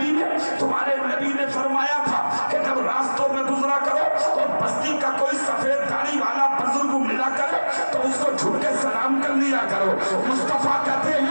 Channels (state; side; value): inverted; both; correlation -1.00